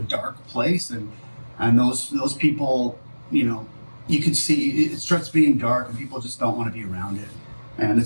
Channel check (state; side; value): inverted; both; correlation -1.00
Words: dark place, and those people, you can see it starts being dark, and people just don't want to be around it. And